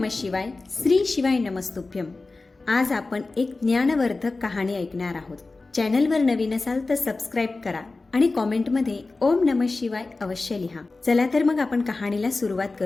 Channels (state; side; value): quieter; right; 3.5 dB